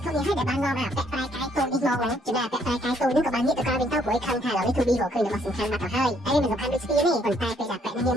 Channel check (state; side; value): normal; both; correlation 0.68